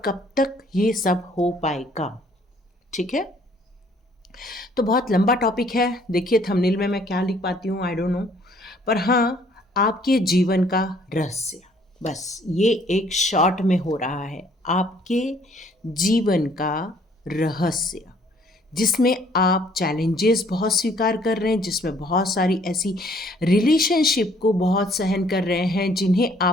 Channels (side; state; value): both; normal; correlation 0.61